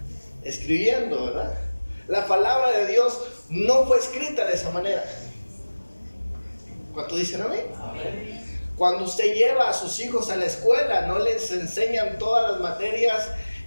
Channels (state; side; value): inverted; both; correlation -1.00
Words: escribiendo, ¿verdad? La palabra de Dios no fue escrita de esa manera. ¿Cuánto dicen amén? Amén. Cuando usted lleva a sus hijos a la escuela, no les enseñan todas las materias